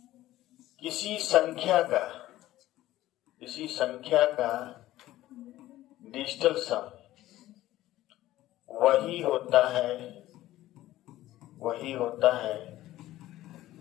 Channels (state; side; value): quieter; right; 15.2 dB